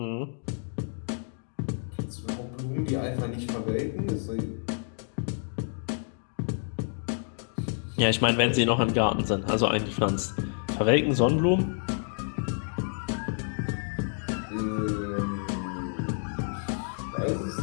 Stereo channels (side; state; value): right; silent; digital silence